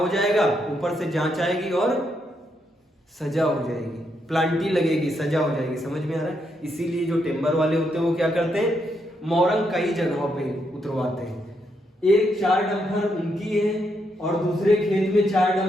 जाएगा, ऊपर से जांच आएगी और सजा हो जाएगी, प्लांटी लगेगी, सजा हो जाएगी। समझ में आ रहा है? इसीलिए जो टेम्बर वाले होते हैं वो क्या करते हैं, मोरंग कई जगहों पे उतरवाते हैं। एक 4 डंपर उनकी है और दूसरे खेत में 4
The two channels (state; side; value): normal; both; correlation 0.79